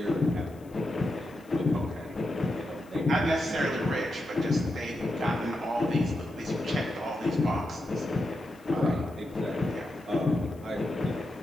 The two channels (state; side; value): noise; left; hiss, 28 dB below the sound